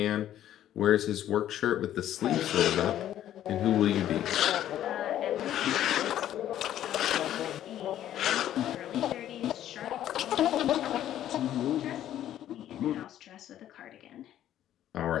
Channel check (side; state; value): right; quieter; 11.8 dB